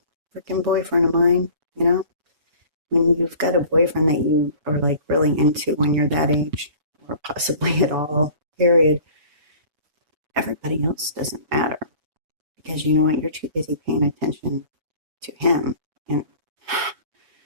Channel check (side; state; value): left; late; 6.6 ms